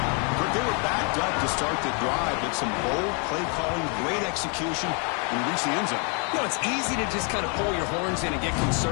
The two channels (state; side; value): quieter; right; 37.2 dB